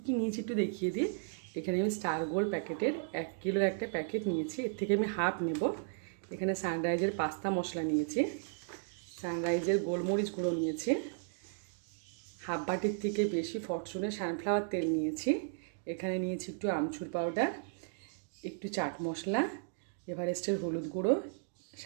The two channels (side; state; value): left; silent; digital silence